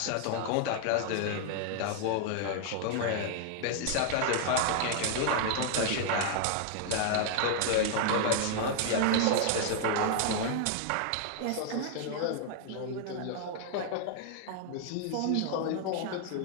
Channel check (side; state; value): both; different; correlation 0.00